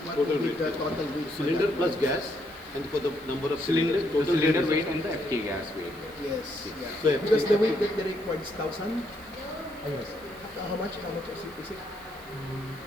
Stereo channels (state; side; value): noise; right; hiss, 23 dB below the sound